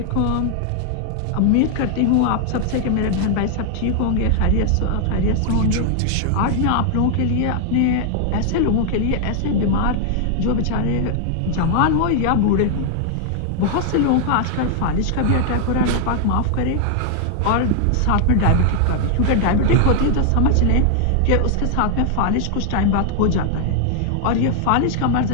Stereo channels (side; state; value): both; different; correlation 0.00